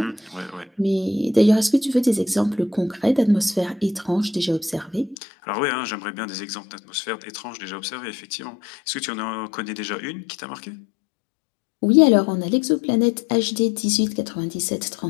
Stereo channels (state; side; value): drops out; right; at 5.2 s